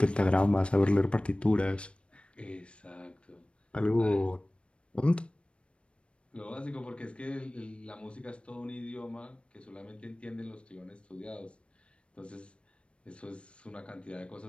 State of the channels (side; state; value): right; late; 0.059 ms